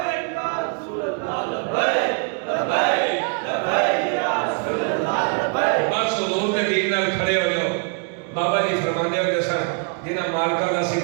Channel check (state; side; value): quieter; left; 38.5 dB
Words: بس حضور دے دین نال کھڑے ہو جاؤ. بابا جی فرمانے ہوتے سن جنہ مالکاں دا سی